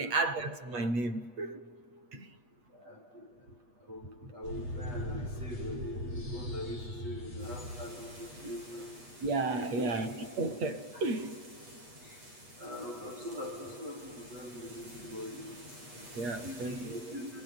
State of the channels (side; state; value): left; late; 8.3 ms